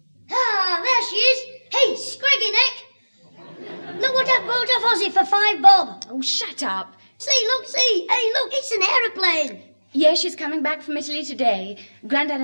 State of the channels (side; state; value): both; inverted; correlation -1.00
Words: Ah, there she is. Hey, Scraggy Neck. Look what I bought off Ozzy for £5 bob. Oh, shut up. See, look, see. Hey, look, it's an aeroplane. Yes, she's coming back from Italy today. Grandad